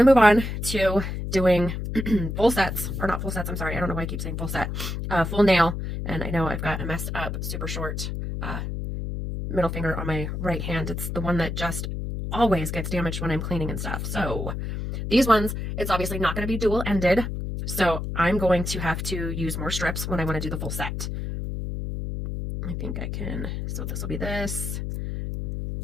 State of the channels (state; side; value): noise; left; hum, 4 dB below the sound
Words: to move on to doing full sets, or not full sets, I'm sorry. I don't know why I keep saying full set. Full nail, and I know I've got a messed up, super short middle finger on my right hand. It's the one that just always gets damaged when I'm cleaning and stuff. So these ones, it's obviously not going to be dual-ended, so I'm going to have to use more strips when I want to do the full set. I think I can, so this will be this.